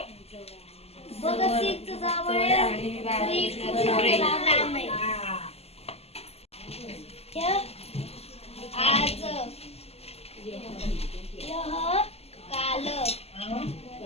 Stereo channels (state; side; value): late; right; 0.29 ms